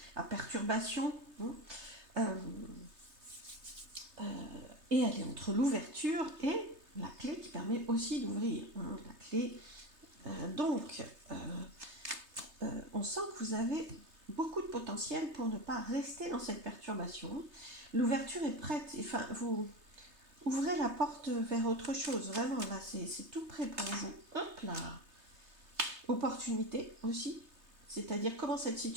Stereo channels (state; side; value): late; left; 3.3 ms